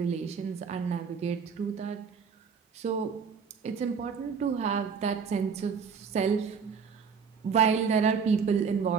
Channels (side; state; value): left; quieter; 6.1 dB